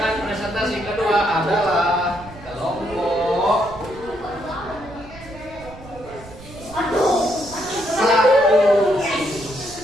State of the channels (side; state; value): right; noise; rumble, 18 dB below the sound